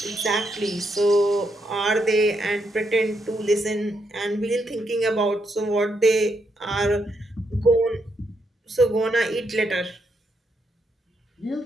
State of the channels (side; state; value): both; normal; correlation 0.79